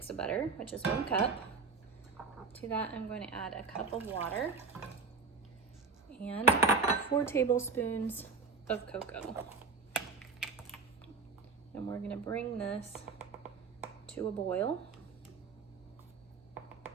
of butter, which is 1 cup. To that, I'm going to add a cup of water and 4 tablespoons of cocoa. And we're going to bring this to a boil.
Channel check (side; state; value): left; quieter; 4.6 dB